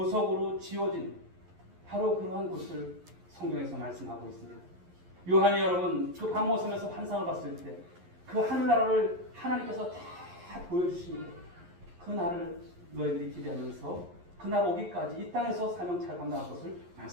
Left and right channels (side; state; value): left; late; 11 ms